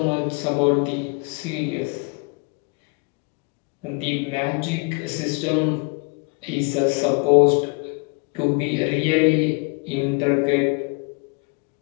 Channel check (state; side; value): quieter; right; 32.6 dB